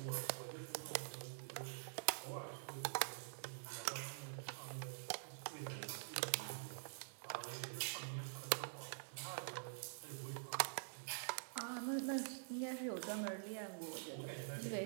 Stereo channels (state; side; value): silent; left; digital silence